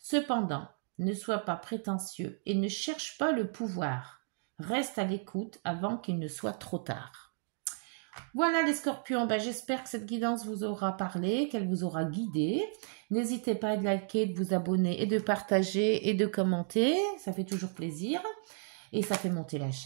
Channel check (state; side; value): silent; left; 56 dB below the other